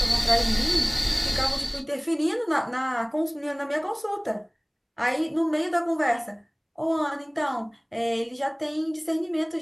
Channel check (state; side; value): identical; both; correlation 1.00